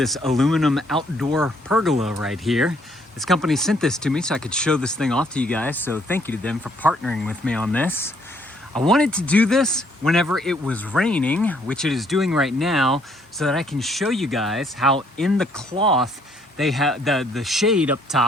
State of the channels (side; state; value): both; normal; correlation 0.66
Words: aluminum outdoor pergola right here. This company sent this to me so I could show this thing off to you guys. So thank you to them for partnering with me on this. I wanted to do this whenever it was raining, which it is doing right now, so that I can show you guys how in the cloth they have the shade up